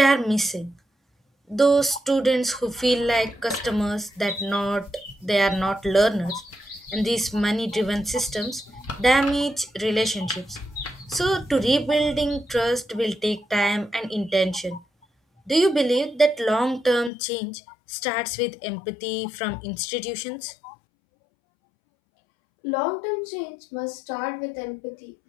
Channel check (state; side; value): drops out; right; at 17.1 s